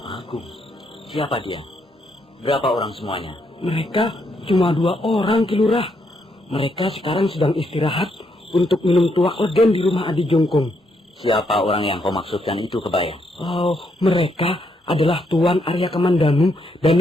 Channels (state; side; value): normal; both; correlation 0.76